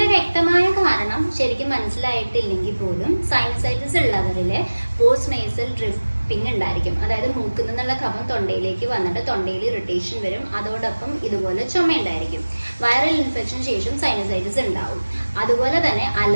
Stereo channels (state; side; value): inverted; both; correlation -1.00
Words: വ്യക്തമായ കാരണം ശരിക്കും മനസ്സിലായിട്ടില്ലെങ്കിൽ പോലും സൈനസൈറ്റിസ് ഉള്ളവരില് പോസ്റ്റ് നേസൽ ഡ്രിപ്പിംഗ് ഉണ്ടായിരിക്കും. അതായത് മൂക്കിൽ നിന്നുള്ള കഫം തൊണ്ടയിലേക്ക് വന്നിട്ട് തൊണ്ടയിൽ ഇറിറ്റേഷൻ വരും. അതോടൊപ്പം ഇതുപോലെ ചുമ ഉണ്ടായിരിക്കും. വൈറൽ ഇൻഫെക്ഷൻ ശേഷം സൈനസൈറ്റിസ് ഉണ്ടാവും. അതുപോലെ തന്നെ